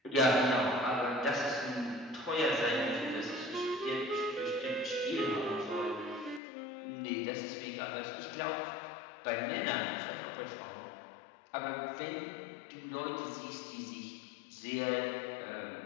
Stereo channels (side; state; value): right; drops out; at 6.4 s